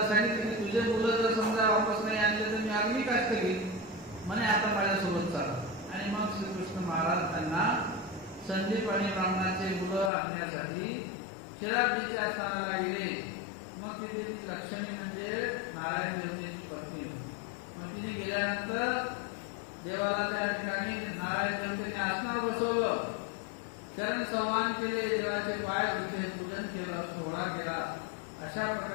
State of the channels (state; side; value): drops out; right; at 10.1 s